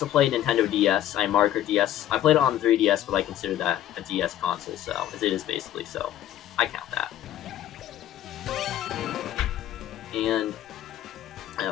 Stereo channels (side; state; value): right; quieter; 12.2 dB